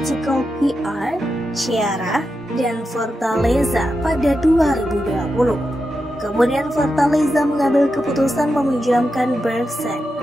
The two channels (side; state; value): both; normal; correlation 0.88